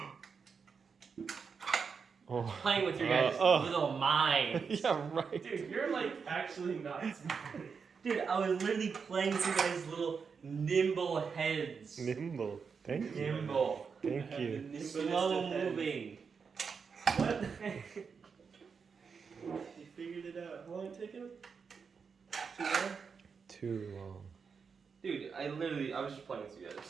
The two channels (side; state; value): left; quieter; 5.8 dB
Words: Oh. Playing with your guys' little minds. Yeah, right. Dude, you're like actually not smart. Dude, I was literally playing with your guys' little nimble heads. Nimble. Thank you. Nimble. Thank you. Slow moving. What? You figured it out. How long did it take him? Too long? Too long. Dude, I was just playing with you